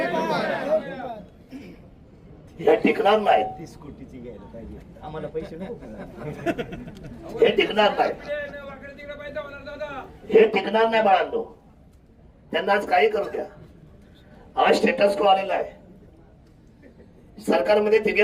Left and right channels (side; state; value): both; identical; correlation 1.00